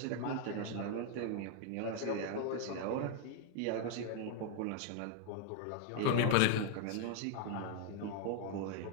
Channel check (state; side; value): different; both; correlation 0.00